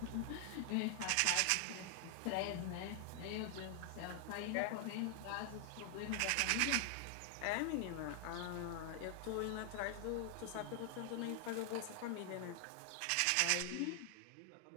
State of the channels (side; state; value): both; different; correlation 0.00